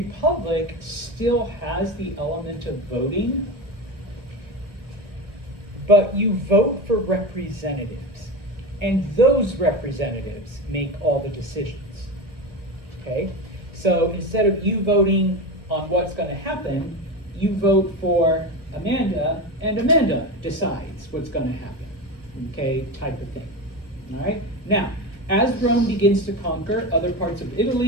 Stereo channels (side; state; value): left; late; 1.5 ms